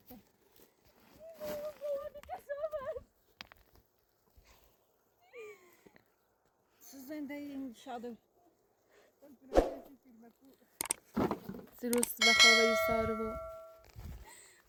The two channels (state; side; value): identical; both; correlation 1.00